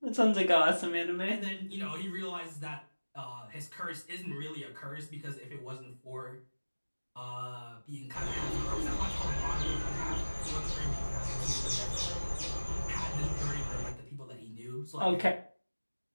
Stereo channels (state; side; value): inverted; both; correlation -1.00